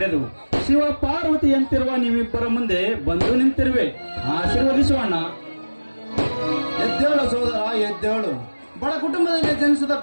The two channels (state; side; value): inverted; both; correlation -1.00